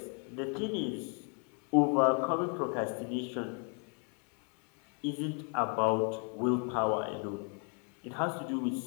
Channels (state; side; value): quieter; right; 39.4 dB